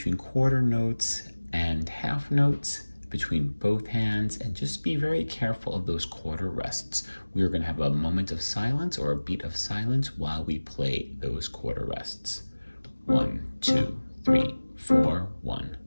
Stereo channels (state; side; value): inverted; both; correlation -1.00